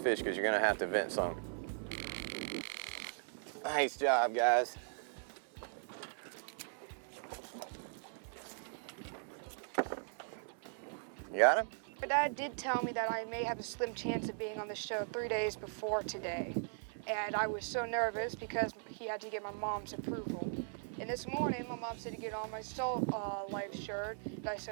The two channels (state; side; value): silent; left; 52 dB below the other